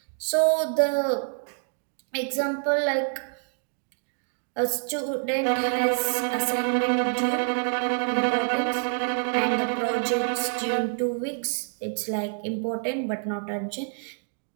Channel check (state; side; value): silent; left; 60 dB below the other